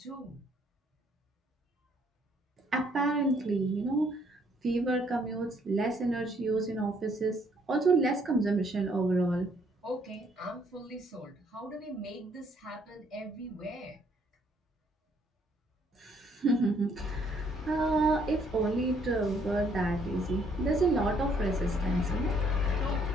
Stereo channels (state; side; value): normal; both; correlation 0.66